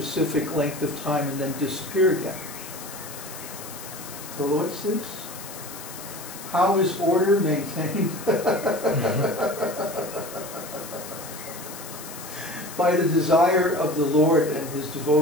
length of time, and then disappear again. So what's this? How is order maintained? By the desire of the Lord and His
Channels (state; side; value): noise; left; hiss, 13 dB below the sound